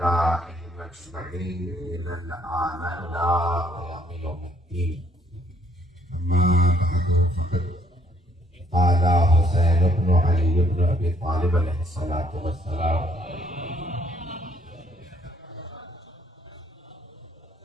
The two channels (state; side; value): normal; both; correlation 0.66